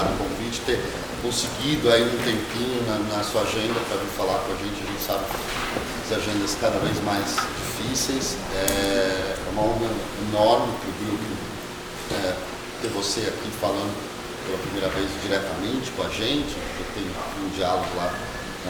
o convite, ter conseguido aí um tempinho na sua agenda para vir falar com a gente. A gente sabe que as agendas cada vez mais difíceis. É uma honra enorme para o grupo ter você aqui falando pela primeira vez diretamente com a gente. Eu tenho um diálogo lá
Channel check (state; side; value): identical; both; correlation 1.00